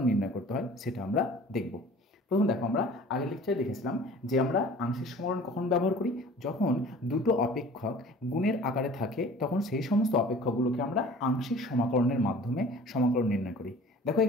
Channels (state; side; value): normal; both; correlation 0.46